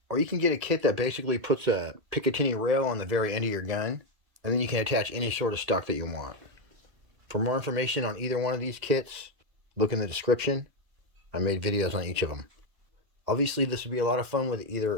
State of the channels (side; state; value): left; late; 2.1 ms